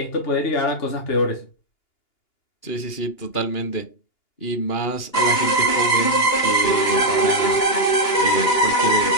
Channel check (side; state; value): right; late; 2.9 ms